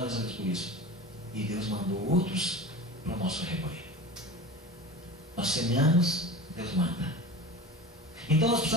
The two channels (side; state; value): both; normal; correlation 0.33